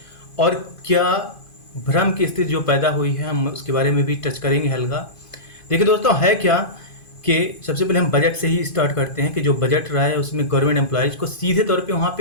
और क्या भ्रम की स्थिति जो पैदा हुई है हम उसके बारे में भी टच करेंगे हल्का। देखिए दोस्तों, है क्या कि सबसे पहले हम बजट से ही स्टार्ट करते हैं कि जो बजट रहा है उसमें गवर्नमेंट एम्प्लॉयज़ को सीधे तौर पे वहाँ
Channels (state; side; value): late; right; 2.5 ms